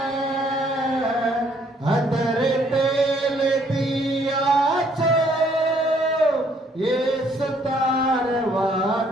अतरे तेल दिया छो येसु तार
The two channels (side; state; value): both; normal; correlation 0.65